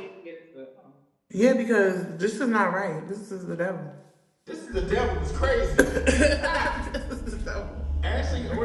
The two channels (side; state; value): both; identical; correlation 1.00